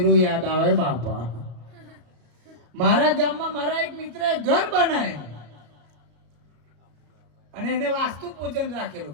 યાદ આવે. બાપા મારા ગામમાં મારા એક મિત્રએ ઘર બનાવેલું અને એને વાસ્તુ પૂજન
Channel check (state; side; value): late; left; 34 ms